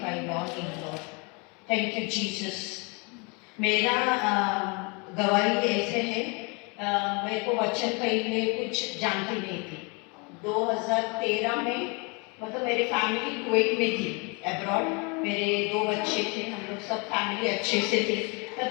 your name, Lord. Thank you, Jesus. मेरा गवाही ऐसे है, मेरे को वचन पहले कुछ जानती नहीं थी। 2013 में मतलब मेरी फैमिली कुवैत में थी, अब्रॉड। मेरे 2 बच्चे थे, हम लोग सब फैमिली अच्छे से थे।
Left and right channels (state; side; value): quieter; right; 30.9 dB